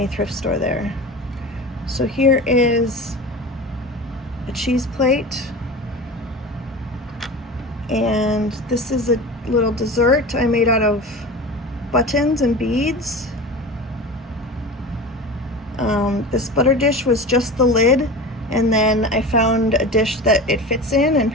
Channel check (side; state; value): both; normal; correlation 0.31